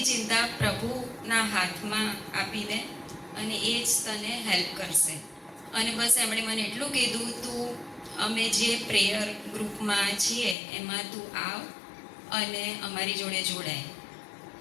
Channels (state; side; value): drops out; right; at 10.6 s